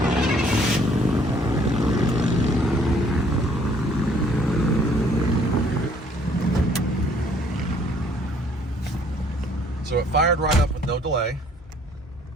So it fired right up with no delay.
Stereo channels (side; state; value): both; normal; correlation 0.61